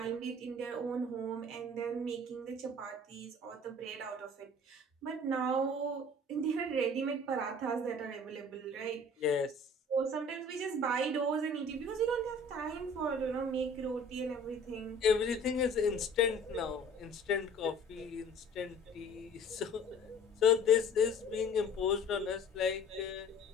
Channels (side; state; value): both; normal; correlation 0.47